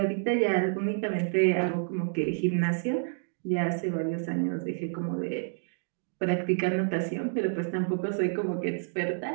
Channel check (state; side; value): silent; left; digital silence